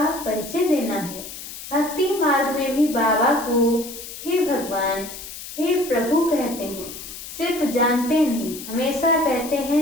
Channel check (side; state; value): left; noise; hiss, 12 dB below the sound